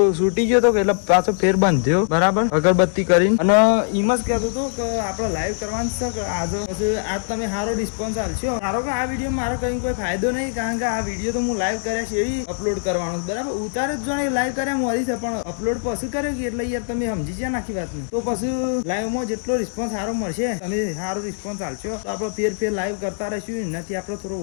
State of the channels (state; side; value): silent; right; digital silence